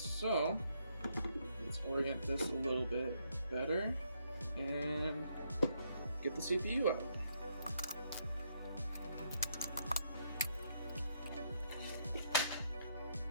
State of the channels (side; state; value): both; inverted; correlation -0.74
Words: let's orient this a little bit better and get the CPU out.